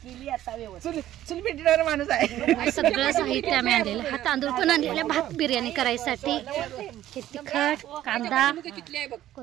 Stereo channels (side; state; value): left; quieter; 13.1 dB